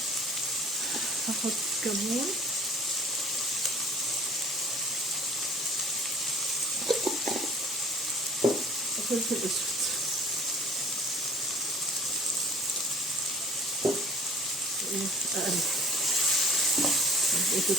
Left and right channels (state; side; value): normal; both; correlation 0.52